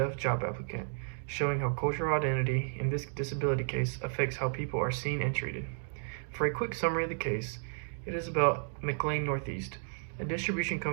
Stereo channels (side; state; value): left; silent; digital silence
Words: job applicant, showing how cultural identity in this disability case affects how people are seen and treated. For a quick summary of the case, it is about McLean Northeast, a distribution